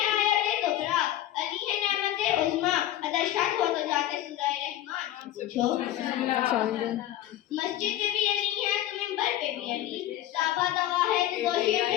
आयत कुबरा, अली है नेमत उज़्मा, अगर शक हो तो जाके सूरह रहमान से पूछो। मस्जिद में भी अली है तो मिंबर पे भी अली, साबा दवा है तो गोशे पे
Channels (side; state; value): right; quieter; 13.3 dB